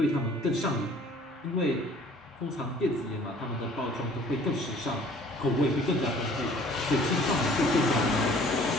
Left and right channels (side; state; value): both; normal; correlation 0.53